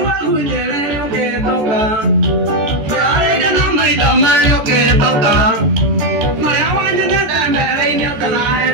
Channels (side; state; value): left; late; 14 ms